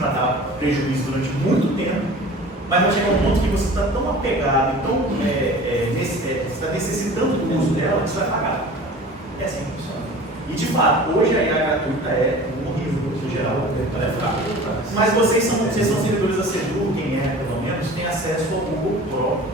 dar prejuízo durante muito tempo, mas vai chegar um ponto que você está tão apegado, você está necessitando do uso dela, que você vai pagar. É assim que funciona. E de fato, hoje a IA gratuita é horrível no geral, ela é fraca. Mas vocês são servidores da Sedu, quem é pelo menos, tem acesso ao Google Pro.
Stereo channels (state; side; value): normal; both; correlation 0.41